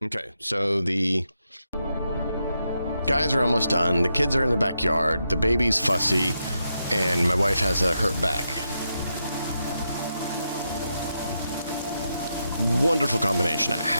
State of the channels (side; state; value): both; inverted; correlation -0.84